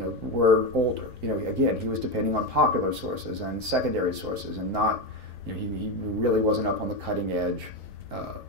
were older. Again, he was depending on popular sources and secondary sources, and not, he really wasn't up on the cutting edge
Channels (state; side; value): normal; both; correlation 0.13